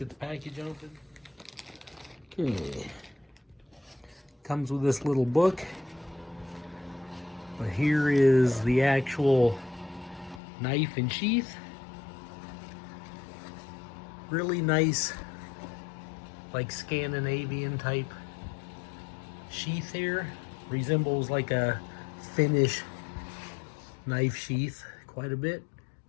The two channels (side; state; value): right; drops out; at 10.4 s